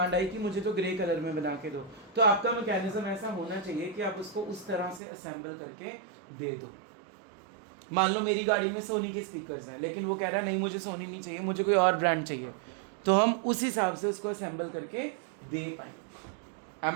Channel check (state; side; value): drops out; left; at 5.0 s